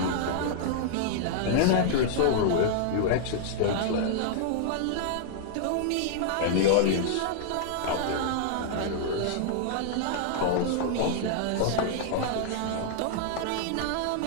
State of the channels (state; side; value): different; both; correlation -0.01